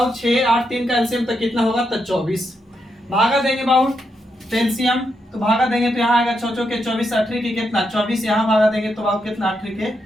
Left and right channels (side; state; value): both; normal; correlation 0.82